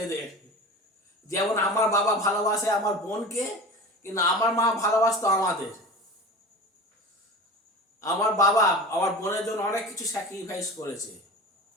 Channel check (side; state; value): both; normal; correlation 0.33